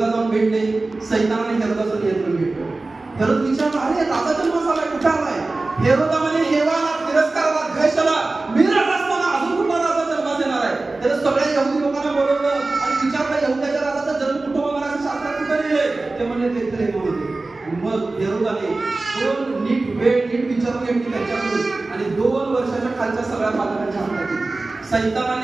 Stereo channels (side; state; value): left; quieter; 3.3 dB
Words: जाऊन भेटले. सैतानाने हेरोदाचं नियंत्रण घेतलं. हेरोद विचारला, अरे राजा जन्म झालाय, कुठे आलाय? हेरोदा म्हणे, हेवाला, तिरस्काराला, द्वेषाला, मी राजा असताना अजून कुठला राजा जन्मास येणार आहे? त्याने सगळ्या यहुदी लोकांना बोलवलं आणि विचारलं, यहुद्याच्या राजाचा जन्म कुठं होणार आहे? शास्त्रात कुठे लिहिलंय? ते म्हणले बेथलेहेम होते. आणि मग हेरोदाने दोन नीट विचारून घेतली त्यांच्याकडून आणि 2 वर्षाच्या खालच्या सगळ्या बालकांच्या हातात दिली.